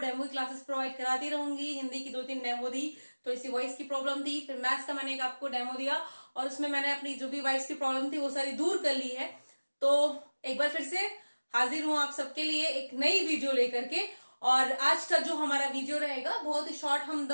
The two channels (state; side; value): inverted; both; correlation -1.00